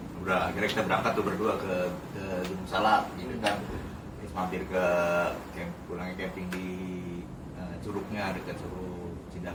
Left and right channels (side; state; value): both; identical; correlation 1.00